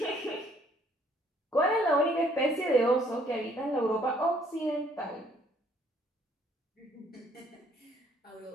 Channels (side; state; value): both; normal; correlation 0.64